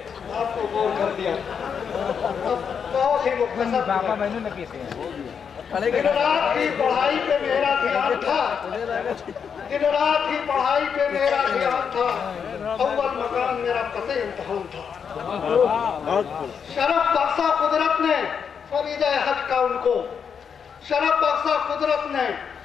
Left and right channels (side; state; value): right; quieter; 6.9 dB